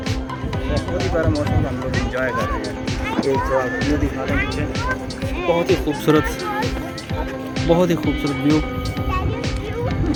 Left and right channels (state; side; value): identical; both; correlation 1.00